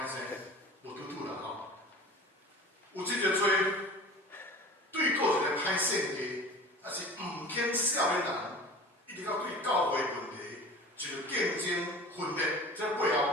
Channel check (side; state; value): both; normal; correlation 0.39